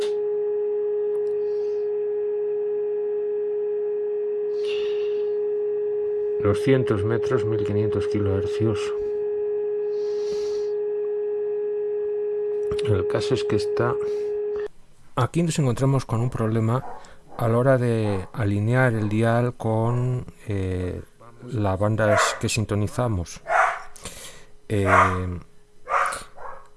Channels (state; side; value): identical; both; correlation 1.00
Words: ...200 metros, 1500 kHz. El caso es que aquí nos encontramos con un problema a la hora de alinear el dial con las bandas que sintonizamos.